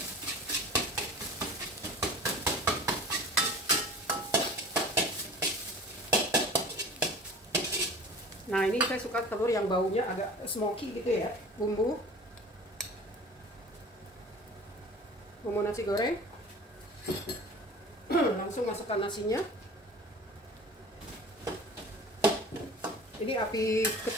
Nah, ini saya suka telur yang baunya agak smoky gitu ya. Bumbu nasi goreng. Langsung masukkan nasinya. Ini api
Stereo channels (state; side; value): normal; both; correlation 0.41